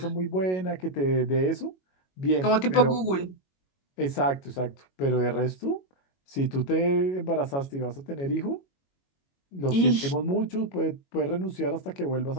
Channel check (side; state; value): right; late; 22 ms